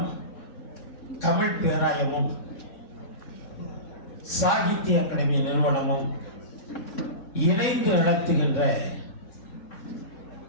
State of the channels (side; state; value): right; late; 3.6 ms